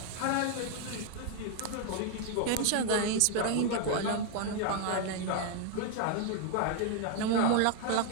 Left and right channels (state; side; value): different; both; correlation 0.00